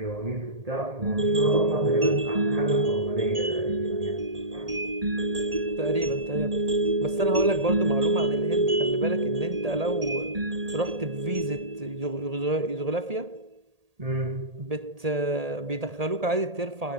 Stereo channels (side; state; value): left; late; 1.8 ms